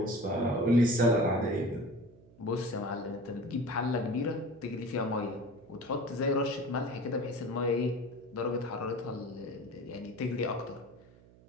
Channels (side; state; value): right; noise; hum, 25 dB below the sound